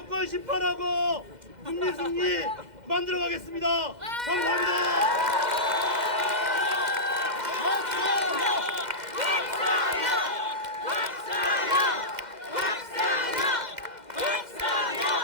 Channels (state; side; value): late; left; 2.0 ms